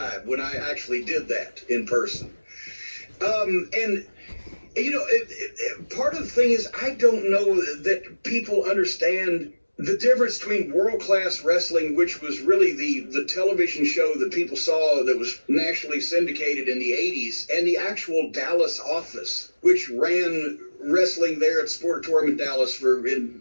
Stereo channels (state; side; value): inverted; both; correlation -1.00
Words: when I actually did that in person. And you know, part of the thing is I don't know that people understand the difference between World Class Wrestling, which was really the television show that people saw that was nationally syndicated in the 80s, and the actual Dallas office, which ran wrestling there at Sportatorium in Dallas